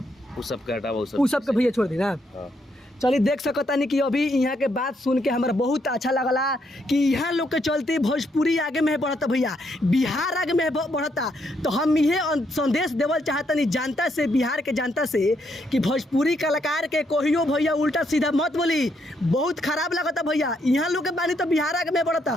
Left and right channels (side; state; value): both; normal; correlation 0.75